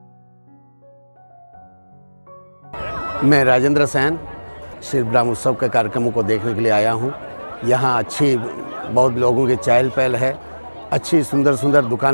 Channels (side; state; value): both; inverted; correlation -1.00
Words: मैं राजेंद्र सैन शिल्पग्राम उत्सव के कार्यक्रमों को देखने के लिए आया हूँ। यहाँ अच्छी बहुत लोगों की चहल पहल है। अच्छी सुंदर सुंदर